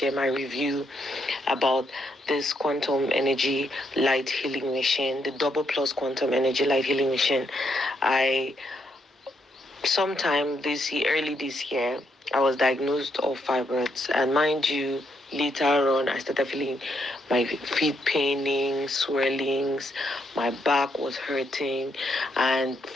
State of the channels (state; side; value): normal; both; correlation 0.77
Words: my review about this quantum energy light healing machine, the double plus quantum energy light healing machine. I Sometime early this year, I was diagnosed of fibroids, and mind you, later on, I started feeling my feet paining, swellings, my back was hurting, and